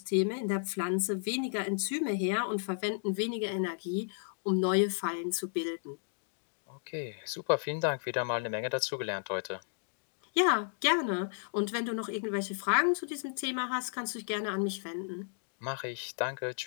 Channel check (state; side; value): silent; right; digital silence